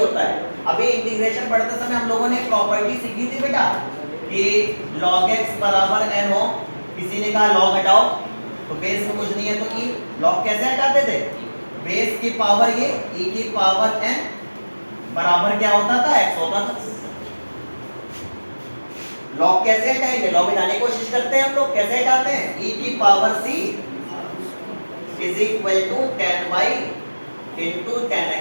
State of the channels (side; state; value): both; inverted; correlation -1.00